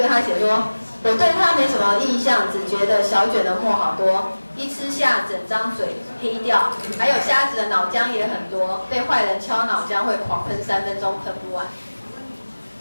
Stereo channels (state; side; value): inverted; both; correlation -1.00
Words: 他写说，我对他没什么印象，只觉得小卷的沫好多，一吃下整张嘴黑掉，还有虾子的脑浆也很多，被坏人敲脑浆会狂喷3分钟喷不完。